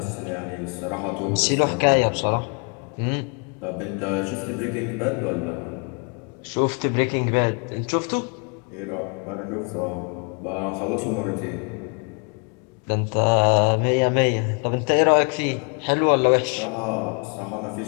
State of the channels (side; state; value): right; quieter; 37.2 dB